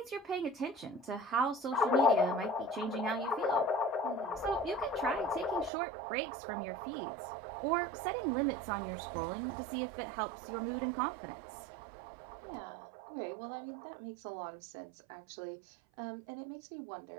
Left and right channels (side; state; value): left; drops out; at 5.7 s